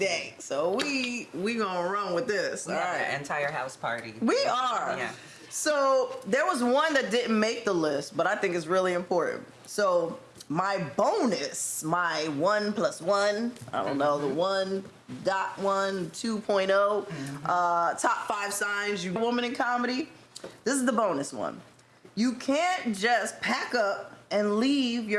So we gonna run with this. All right, entire house party. We are. Yeah. So there was one that didn't make the list, but I think it's really important. So my bonus, my 1+1, I don't know, the 1.1, 2.0, top 5 signs you woman in comedy. This is the bonus one. You can't just pack up and leave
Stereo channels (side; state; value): both; identical; correlation 1.00